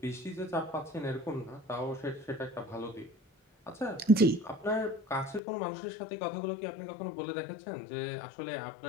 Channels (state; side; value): drops out; right; at 5.4 s